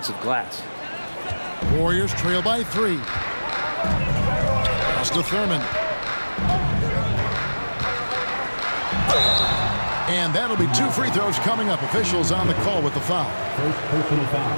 glass. Warriors trail by 3. Pass to Thurman. And that'll be 2 free throws coming up. Officials on the call with the foul. First personal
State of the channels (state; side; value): inverted; both; correlation -1.00